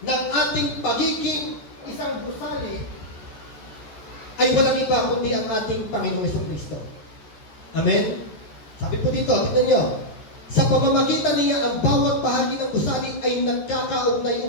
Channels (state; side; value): late; right; 14 ms